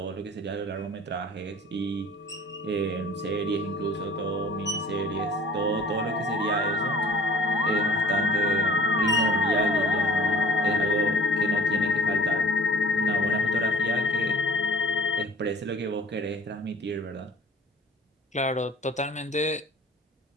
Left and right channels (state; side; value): normal; both; correlation 0.48